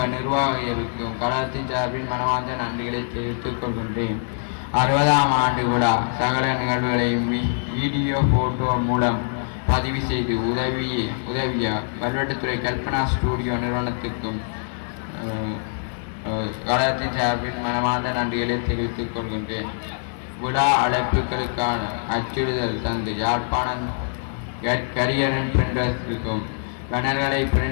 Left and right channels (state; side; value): silent; right; digital silence